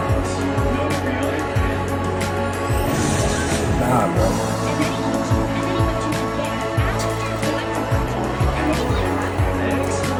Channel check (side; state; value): both; identical; correlation 1.00